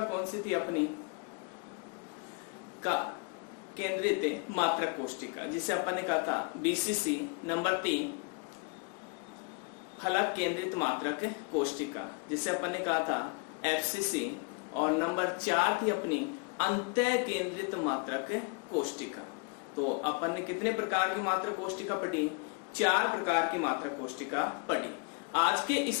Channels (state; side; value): quieter; right; 34.5 dB